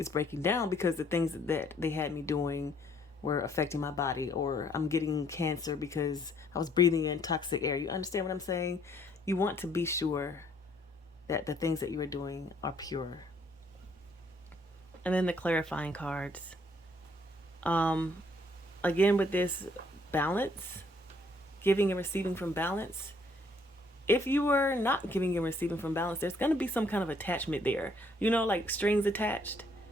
breaking down because the things that they had me doing were affecting my body, or I'm getting cancer because I was breathing in toxic air. You understand what I'm saying? You want to be sure that the things that you are doing are pure. And then the clarifying cards. Again, with this balance, giving and receiving from balance. If you were not giving and receiving from balance, there's going to be some kind of attachment there. Like strings attached.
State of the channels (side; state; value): both; normal; correlation 0.65